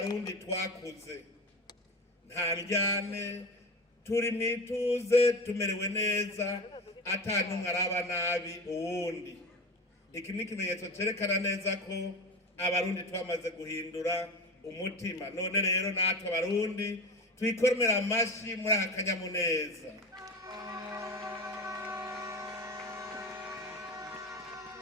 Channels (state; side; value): normal; both; correlation 0.28